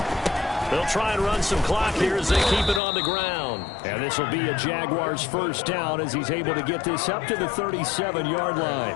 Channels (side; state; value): right; drops out; at 2.8 s